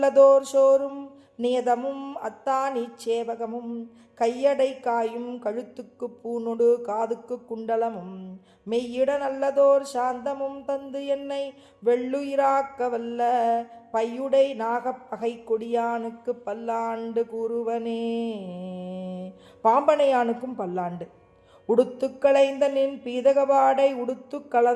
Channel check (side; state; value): both; identical; correlation 1.00